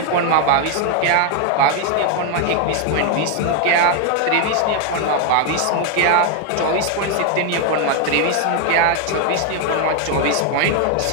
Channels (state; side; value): different; both; correlation 0.01